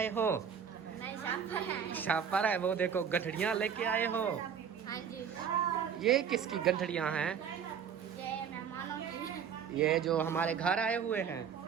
हो? नहीं शापर है। शापर है। वो देखो, गठड़ियाँ लेके आए हो? हाँ जी, ये किसकी गठड़ियाँ हैं? ये मेहमानों की। ये जो हमारे घर आए हुए हैं,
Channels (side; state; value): left; quieter; 7.6 dB